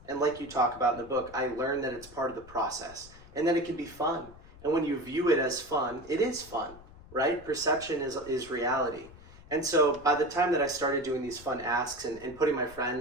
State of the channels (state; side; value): noise; left; rumble, 20 dB below the sound